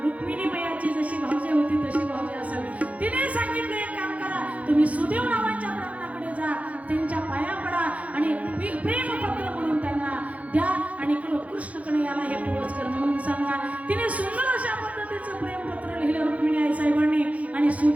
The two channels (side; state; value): left; late; 0.067 ms